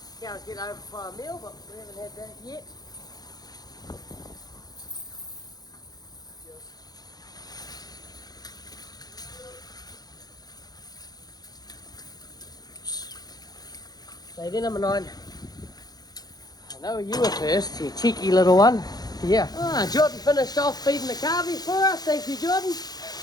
cows get over for a meal, but we haven't had that yet. Lady number 9. I know you were first, you cheeky little one. Yeah. Jordan finished off feeding the calves for us. Thank you, Jordan.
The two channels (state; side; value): late; right; 0.19 ms